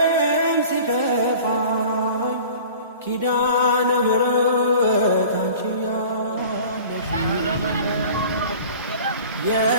ሲከፋኝ ኪዳነ ምሕረት አንቺ ያለሽ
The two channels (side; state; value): both; inverted; correlation -0.43